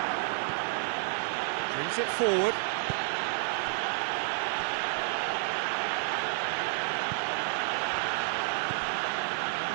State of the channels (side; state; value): left; silent; 58 dB below the other